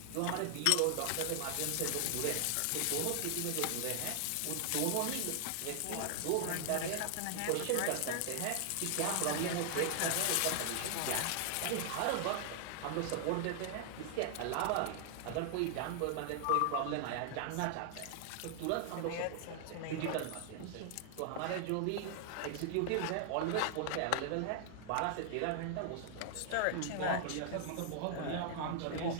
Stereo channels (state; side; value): different; both; correlation 0.00